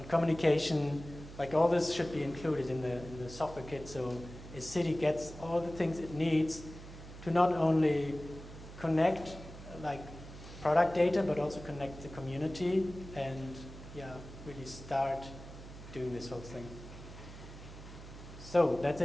communication. Like all this should be included in the software kit, so a city gets all the things it needs to not only connect like product data, but also connect the community and really start doing this whole thing. So that's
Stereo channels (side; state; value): right; noise; hum, 14 dB below the sound